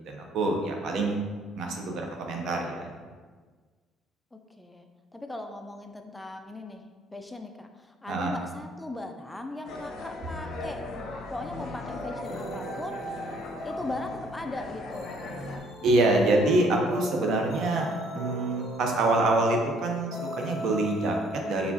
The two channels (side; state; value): both; normal; correlation 0.63